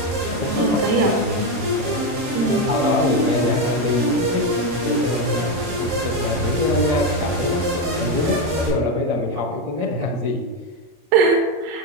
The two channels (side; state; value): left; late; 27 ms